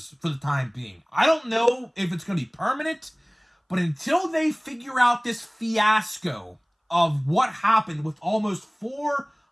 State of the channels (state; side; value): identical; both; correlation 1.00